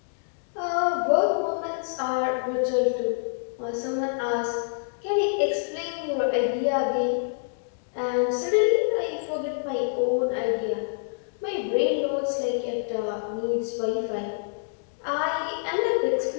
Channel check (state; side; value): silent; right; digital silence